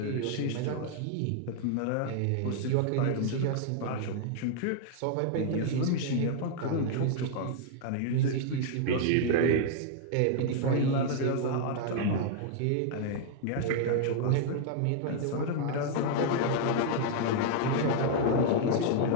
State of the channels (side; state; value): both; different; correlation -0.01